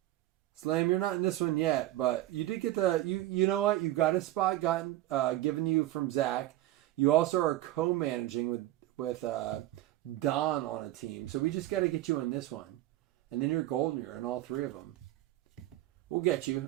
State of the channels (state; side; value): quieter; left; 15.3 dB